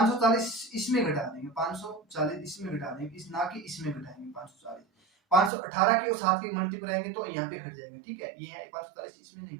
इसमें घटा देंगे, 540 इसमें घटा देंगे, इस ना कि इसमें घटाएंगे 540, 518 की और 7 की मल्टीप्लाई करेंगे तो यहाँ पे घट जाएगा। ठीक है, ये है 540 इसमें नहीं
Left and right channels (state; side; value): drops out; left; at 5.5 s